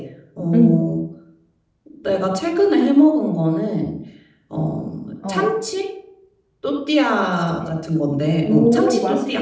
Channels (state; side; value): identical; both; correlation 1.00